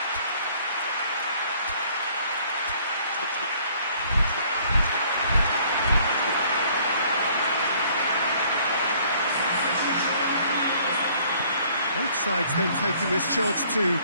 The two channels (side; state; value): both; inverted; correlation -0.59